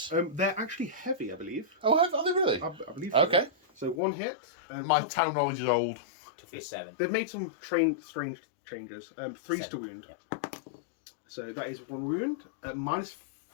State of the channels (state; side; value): drops out; right; at 4.0 s